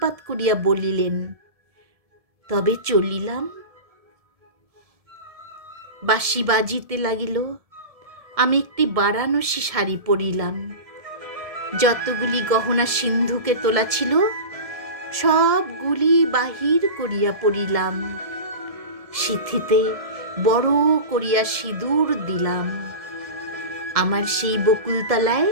করিয়া বলিলেন, তবে চলিলাম। বাঁশি বাজিতে লাগিল। আমি একটি বারাণসী শাড়ি পরিলাম। যতগুলি গহনা সিন্ধুকে তোলা ছিল সবগুলি বাহির করিয়া পড়িলাম। সিথিতে বড় করিয়া সিঁদুর দিলাম। আমার সেই বকুলতলায়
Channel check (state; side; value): late; left; 1.7 ms